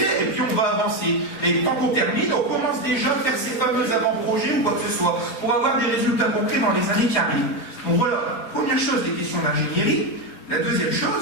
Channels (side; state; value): right; late; 4.9 ms